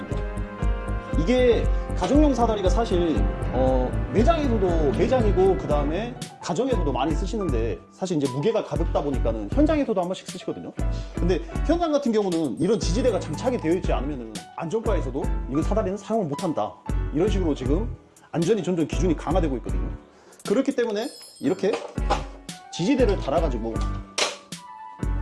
이게 가정용 사다리가 사실 매장이고 그 다음에 가정에서도 많이 쓰시는데, 사실 이제 무게가 가볍다 보니까는 현장에서도 한 번씩 쓰시거든요. 근데 현장 같은 경우는 이런 지지대가 장착이 되어 있지 않으면은 안전과에서도 이거 사다리는 사용을 못한다, 이런 식으로 지금 안전이 점점 기준이 강화되고 있거든요. 그렇기 때문에 이렇게 지지대를 달아가지고,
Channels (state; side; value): identical; both; correlation 1.00